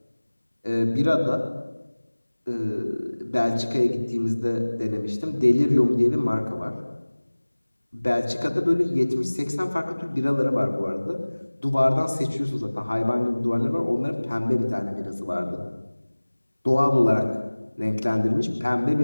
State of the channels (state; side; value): inverted; both; correlation -1.00